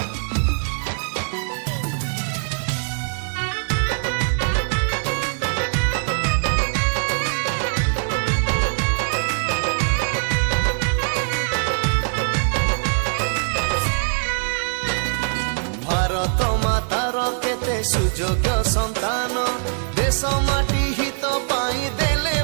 भारत मातार केते सुयोग्य संतान देश माटी हित पाई देले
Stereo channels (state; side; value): silent; left; digital silence